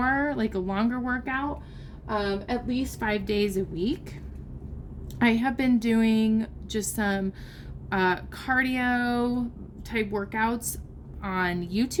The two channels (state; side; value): identical; both; correlation 1.00